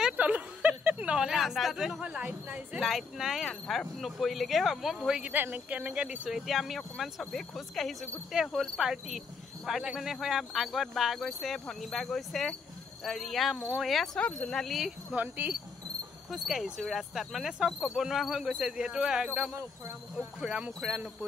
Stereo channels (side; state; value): right; quieter; 4.9 dB